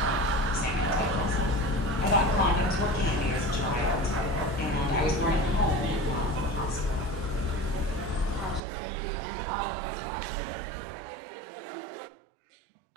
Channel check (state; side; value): drops out; left; at 8.6 s